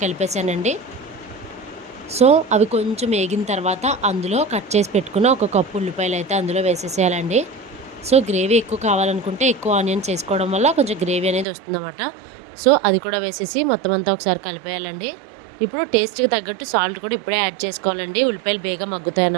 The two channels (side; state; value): left; drops out; at 11.5 s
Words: కలిపేశానండి. సో అవి కొంచెం వేగిన తర్వాత అందులో కట్ చేసి పెట్టుకున్న ఒక కప్పు ఉల్లిపాయలు అయితే అందులో వేసేసేయాలండి. సో గ్రేవీ ఎక్కువ కావాలనుకుంటే ఎక్కువ ఆనియన్స్ వేసుకోవడం వల్ల కొంచెం గ్రేవీ అనేది వస్తుందన్నమాట. సో అది కూడా వేసేసి మొత్తం అంతా ఒకసారి కలిపేయాలండి. ఇప్పుడు టేస్ట్కి తగ్గట్టు సాల్ట్ కూడా ఇప్పుడే యాడ్ చేసుకోవాలండి. ఉల్లిపాయలు బేగా మగ్గుతాయి